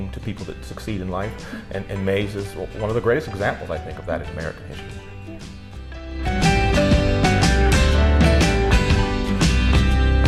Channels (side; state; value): both; identical; correlation 1.00